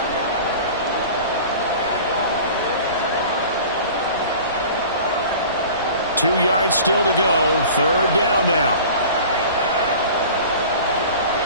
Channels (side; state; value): both; inverted; correlation -0.41